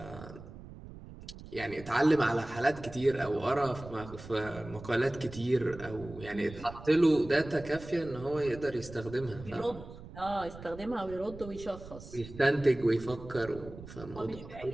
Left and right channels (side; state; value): right; noise; rumble, 15 dB below the sound